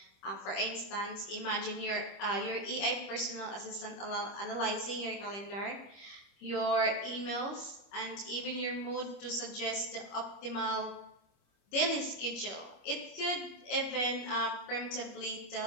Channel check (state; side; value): late; right; 26 ms